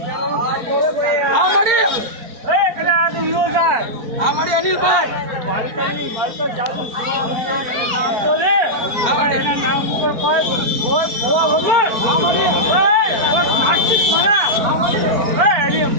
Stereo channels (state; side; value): late; left; 4.4 ms